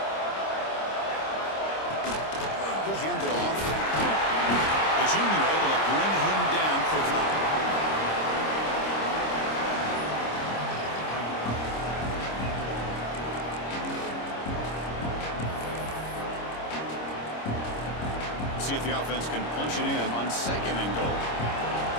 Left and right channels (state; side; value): late; right; 26 ms